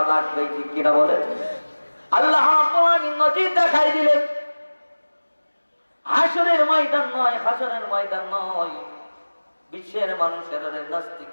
লাগবে, ঠিক কিনা বলে। আল্লাহ নজির দেখাই দিলেন, হাসরের ময়দান নয়, হাসরের ময়দান নয়, বিশ্বের মানুষের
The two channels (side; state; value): both; inverted; correlation -1.00